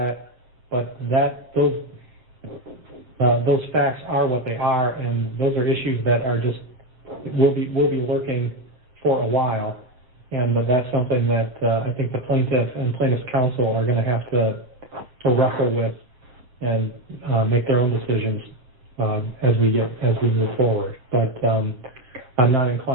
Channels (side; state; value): left; late; 7.8 ms